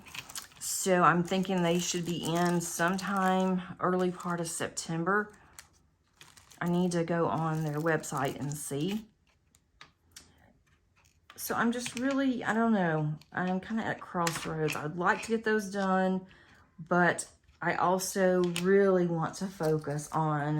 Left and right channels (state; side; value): identical; both; correlation 1.00